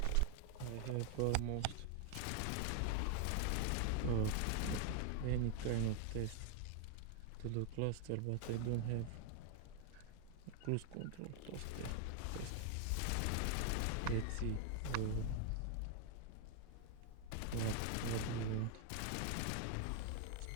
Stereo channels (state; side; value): different; both; correlation 0.01